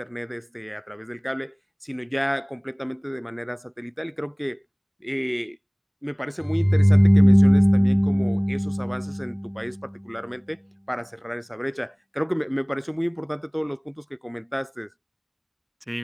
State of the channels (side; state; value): both; identical; correlation 1.00